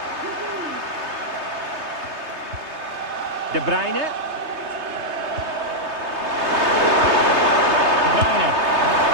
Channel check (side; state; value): left; late; 3.3 ms